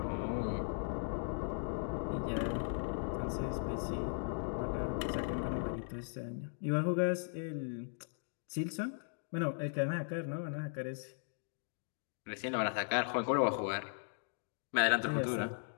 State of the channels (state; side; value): silent; right; digital silence